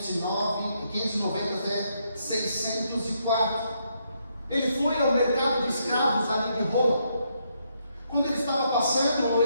até 604, ele foi ao mercado de escravos ali de Roma. Quando ele estava passando,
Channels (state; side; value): inverted; both; correlation -0.76